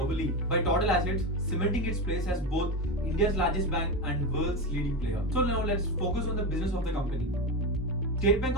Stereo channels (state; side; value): normal; both; correlation 0.17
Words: by total assets, cementing its place as both India's largest bank and world's leading player. So now let's focus on the business of the company. State Bank